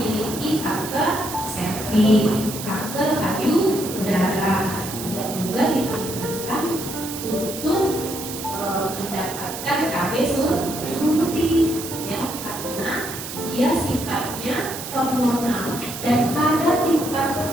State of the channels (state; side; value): noise; right; hiss, 9 dB below the sound